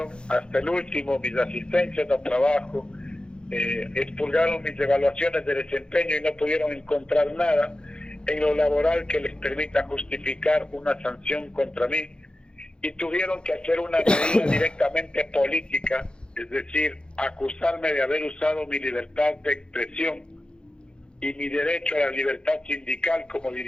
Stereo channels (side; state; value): right; late; 0.052 ms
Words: hasta el último mis asistencias a trabajo, expulgaron mis evaluaciones de desempeño y no pudieron encontrar nada en lo laboral que les permita justificar una sanción contra mí, y tuvieron que hacer una medida directamente política, es decir, acusarme de haber usado mi libertad de expresión y mi derecho a la libertad sindical como